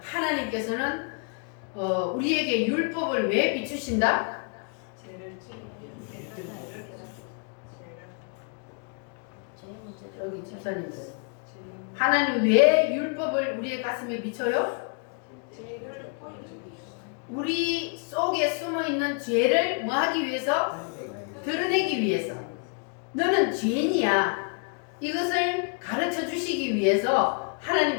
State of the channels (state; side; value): quieter; right; 39.0 dB